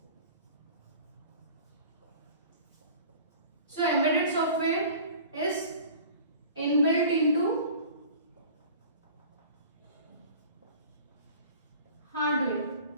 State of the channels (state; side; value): inverted; both; correlation -0.43